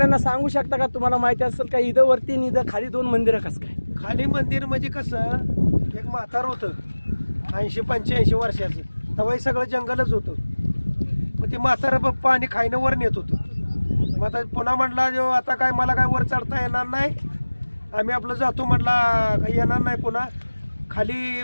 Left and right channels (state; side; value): inverted; both; correlation -1.00